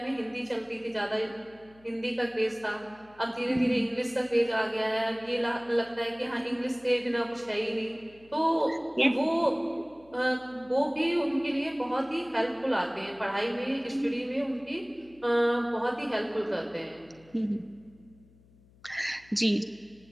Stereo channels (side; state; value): left; noise; hum, 28 dB below the sound